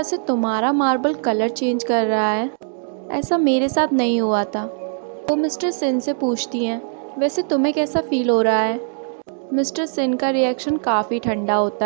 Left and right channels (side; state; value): left; silent; digital silence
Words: से तुम्हारा मार्बल कलर चेंज कर रहा है ऐसा मेरे साथ नहीं हुआ था। वो मिस्टर सिन से पूछती हैं, वैसे तुम्हें कैसा फील हो रहा है? मिस्टर सिन का रिएक्शन काफ़ी ठंडा